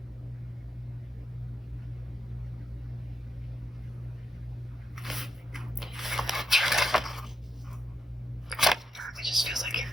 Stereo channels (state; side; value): normal; both; correlation 0.84